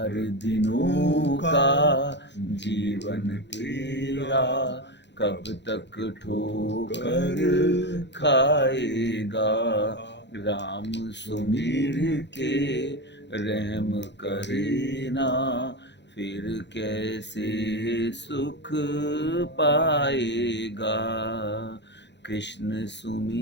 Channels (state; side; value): late; right; 0.51 ms